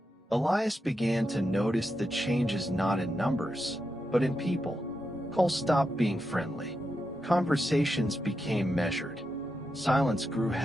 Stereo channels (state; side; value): normal; both; correlation 0.87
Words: Elias began to notice the changes not in numbers, but in people. Calls stopped being friendly. Conversations became measured. Silence grew